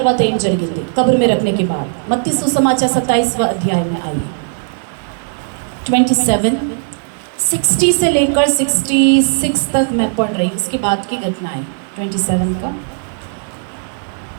ఏం జరిగింది कब्र में रखने के बाद। मत्ती सुसमाचार 27वां अध्याय में आइए। 27 60 से लेकर 66 तक मैं पढ़ रही हूँ, उसके बाद की घटना है 27 का।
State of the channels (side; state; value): left; silent; digital silence